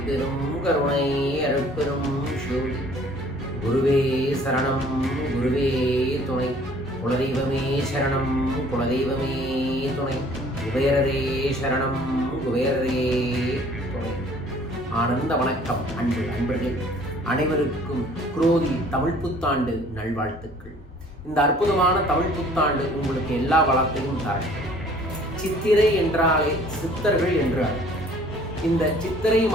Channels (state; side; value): normal; both; correlation 0.54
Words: கருணை அருட்பெரும் ஜோதி. குருவே சரணம் குருவே துணை, குலதெய்வமே சரணம் குலதெய்வமே துணை, குபேரரே சரணம் குபேரரே துணை. ஆனந்த வணக்கம் அன்பர்களே, அனைவருக்கும் குரோதி தமிழ் புத்தாண்டு நல்வாழ்த்துக்கள். இந்த அற்புதமான தமிழ் புத்தாண்டு உங்களுக்கு எல்லா வளத்தையும் தரட்டும். சித்திரை என்றாலே சித்தர்கள் என்றார். இந்த சித்திரை